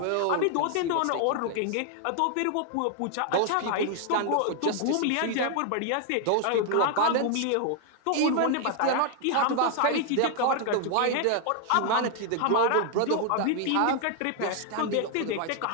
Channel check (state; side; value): different; both; correlation 0.00